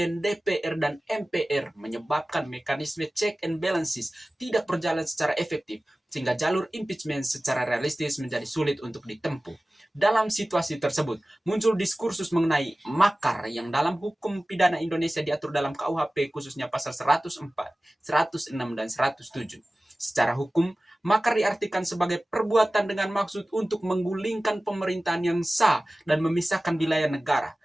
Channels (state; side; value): normal; both; correlation 0.97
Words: DPR, dan MPR menyebabkan mekanisme check and balances tidak berjalan secara efektif, sehingga jalur impeachment secara realistis menjadi sulit untuk ditempuh. Dalam situasi tersebut, muncul diskursus mengenai makar yang dalam hukum pidana Indonesia diatur dalam KUHP khususnya pasal 104, 106, dan 107. Secara hukum, makar diartikan sebagai perbuatan dengan maksud untuk menggulingkan pemerintahan yang sah dan memisahkan wilayah negara.